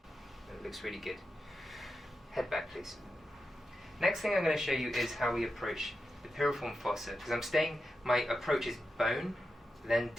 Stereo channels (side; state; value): both; normal; correlation 0.89